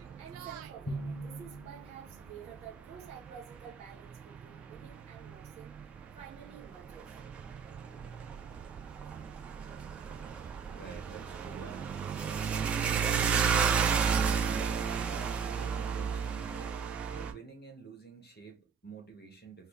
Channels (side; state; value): left; quieter; 6.3 dB